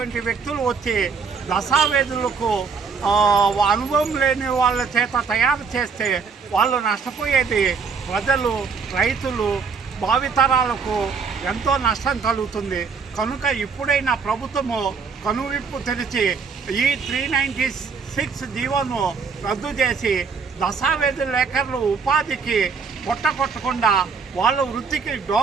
వ్యక్తులు వచ్చి దస్తావేజులకు అనుభవం లేని వాళ్ళ చేత తయారు చేస్తే వాళ్ళు నష్టపోయేది ప్రజలు, రైతులు, భావితరాలకు ఎంతో నష్టం కలుగుతుంది. కనుక ఇప్పుడైనా ప్రభుత్వము కనువిప్పు తెరిచి ఈ 396 జీవోను రద్దు చేసి దస్తావేజు లేఖర్లు ఉపాధికి కొట్టకుండా వాళ్ళ వృత్తికి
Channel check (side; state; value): left; quieter; 5.4 dB